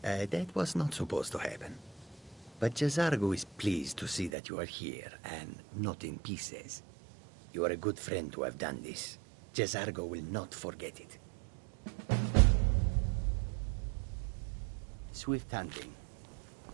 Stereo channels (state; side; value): drops out; left; at 4.3 s